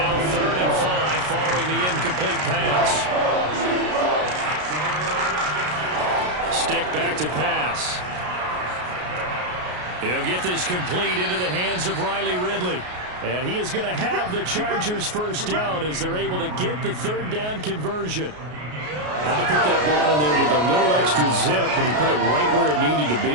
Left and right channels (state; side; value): late; left; 33 ms